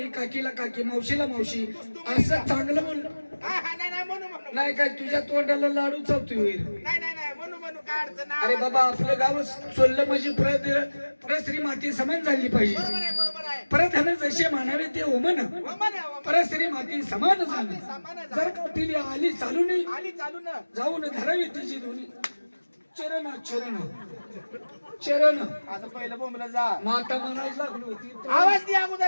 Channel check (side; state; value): both; inverted; correlation -1.00